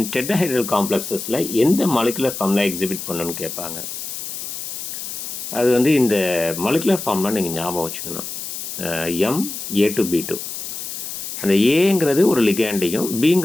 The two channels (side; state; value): left; noise; hiss, 7 dB below the sound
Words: டெட்ராஹெட்ரல் காம்ப்ளெக்ஸஸில் எந்த மாலிகுலர் ஃபார்முலா எக்ஸிபிட் பண்ணணும்னு கேட்பாங்க. அது வந்து இந்த மாலிகுலர் ஃபார்முலா நீங்கள் ஞாபகம் வச்சுக்கணும். MA2B2. அந்த ஏங்கிறது ஒரு லிகாண்டையும்